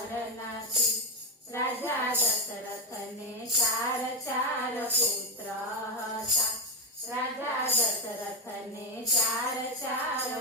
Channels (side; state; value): both; normal; correlation 0.10